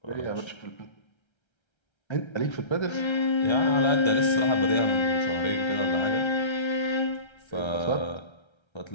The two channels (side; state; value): right; late; 1.3 ms